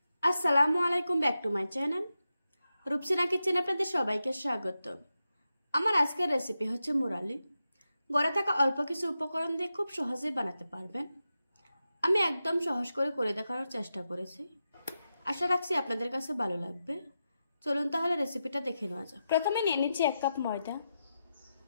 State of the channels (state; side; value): inverted; both; correlation -0.89